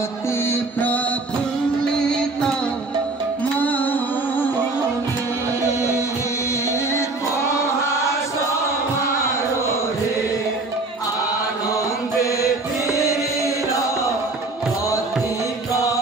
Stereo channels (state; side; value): quieter; left; 3.3 dB